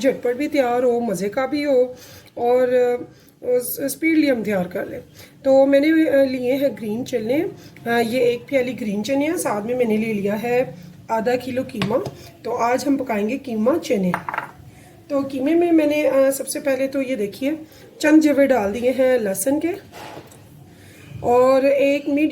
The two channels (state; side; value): identical; both; correlation 1.00